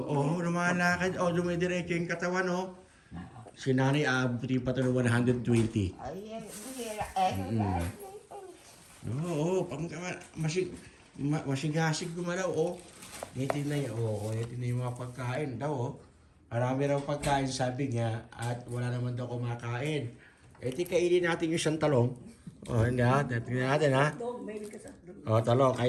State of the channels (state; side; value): identical; both; correlation 1.00